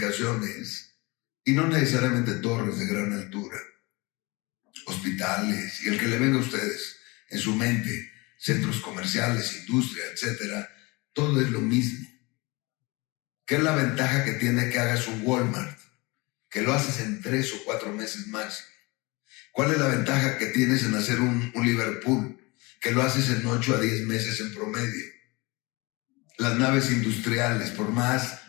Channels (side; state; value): right; quieter; 25.2 dB